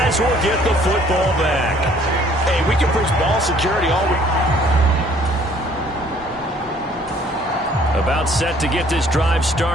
will get the football back. Hey, we can preach ball security all week. About set to get this drive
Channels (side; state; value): both; normal; correlation 0.58